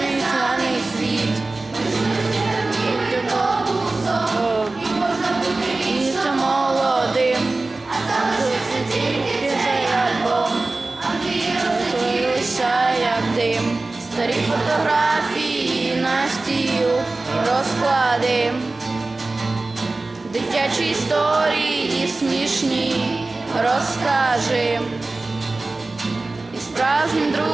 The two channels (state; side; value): quieter; left; 3.3 dB